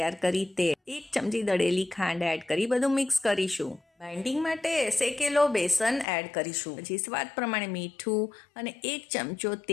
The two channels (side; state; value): right; drops out; at 6.1 s